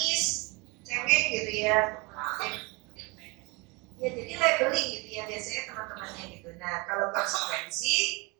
cengeng gitu ya. Ya jadi labeling gitu ya biasanya teman-temannya gitu. Nah kalau konsekuensi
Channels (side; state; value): left; quieter; 26.0 dB